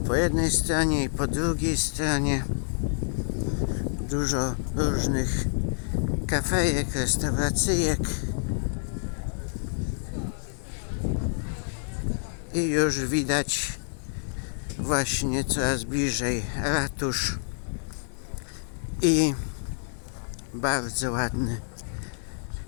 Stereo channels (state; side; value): silent; right; digital silence